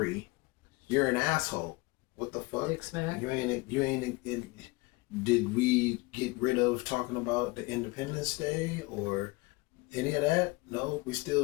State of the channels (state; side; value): quieter; right; 24.0 dB